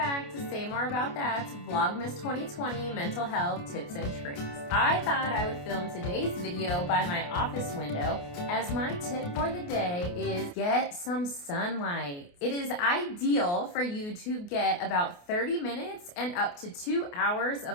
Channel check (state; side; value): late; right; 28 ms